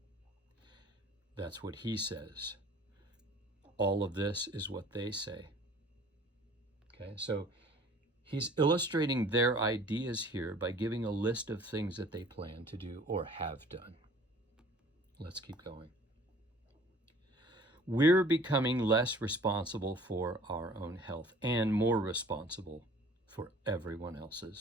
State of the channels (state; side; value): normal; both; correlation 0.50